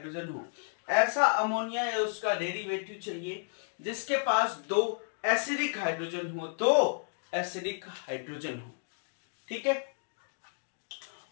हो, ऐसा अमोनिया या उसका डेरिवेटिव चाहिए जिसके पास 2 एसिडिक हाइड्रोजन हो, तो एसिडिक हाइड्रोजन हो, ठीक है।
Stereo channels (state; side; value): silent; right; digital silence